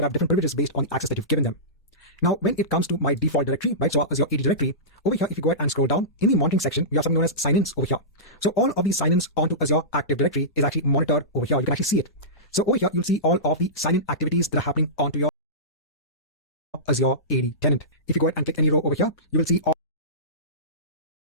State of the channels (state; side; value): normal; both; correlation -0.19